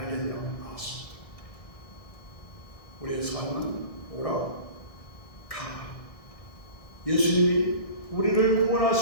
나왔습니다. 우리의 삶은 오라 가라. 예수님이 우리를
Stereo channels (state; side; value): late; right; 1.6 ms